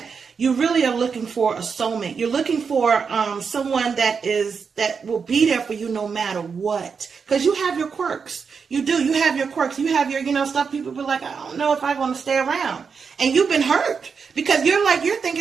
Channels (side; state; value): left; quieter; 5.8 dB